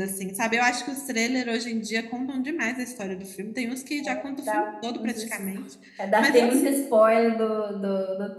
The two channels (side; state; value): both; identical; correlation 1.00